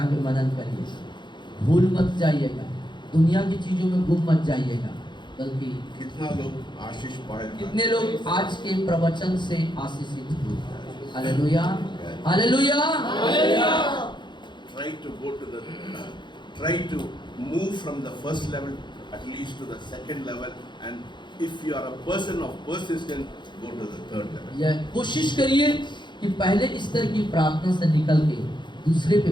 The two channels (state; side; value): late; right; 0.22 ms